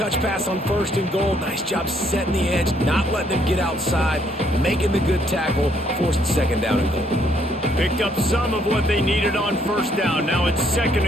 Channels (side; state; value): both; normal; correlation 0.69